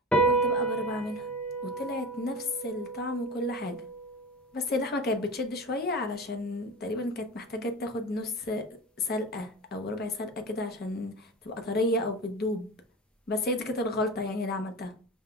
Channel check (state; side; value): normal; both; correlation 0.30